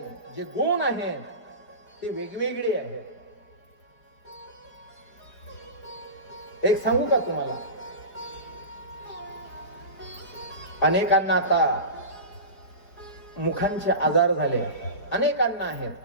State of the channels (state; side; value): late; right; 4.9 ms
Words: जे गुण आहेत ते वेगवेगळे आहेत. एक सांगू का तुम्हाला? अनेकांना आता मुखांचे आजार झाले, अनेकांना आहेत.